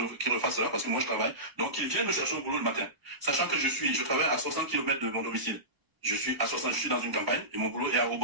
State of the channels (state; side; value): late; left; 1.0 ms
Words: refasse cela parce que moi je travaille. Donc qu'il vienne me chercher au boulot le matin. Sachant que je travaille à 60 km de mon domicile. Je suis dans une campagne et mon boulot est à